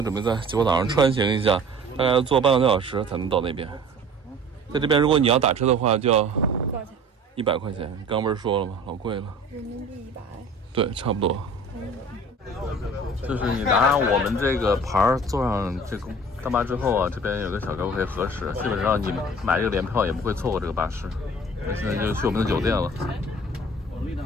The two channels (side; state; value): both; normal; correlation 0.46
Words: 准备在吉坡岛上穿行一下，大概要坐半个多小时才能到那边。在这边，如果你要打车的话，就要多少钱？100块钱。刚不是说了吗？老贵了。人民币100。对，差不多。就是你拿上我们这个牌儿，坐上这个大巴之后啊，这边有个小哥可以核实，基本上你买这个联票也不会错过这个巴士。那现在就去我们的酒店了。我